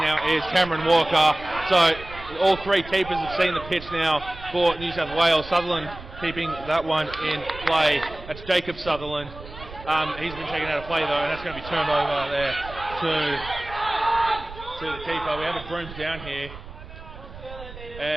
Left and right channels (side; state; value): right; noise; rumble, 15 dB below the sound